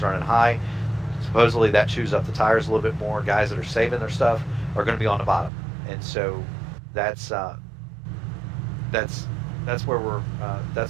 running high. Supposedly that chews up the tires a little bit more. Guys that are saving their stuff are going to be on the bottom. And so that's that's where we're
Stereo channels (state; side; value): drops out; left; at 5.5 s